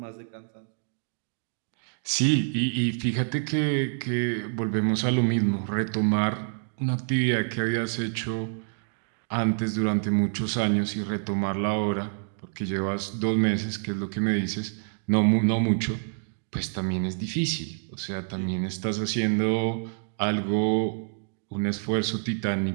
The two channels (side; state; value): left; silent; digital silence